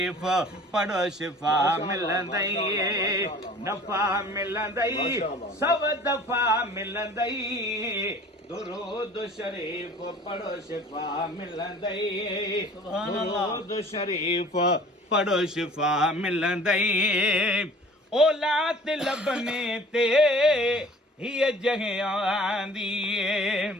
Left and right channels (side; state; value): both; normal; correlation 0.48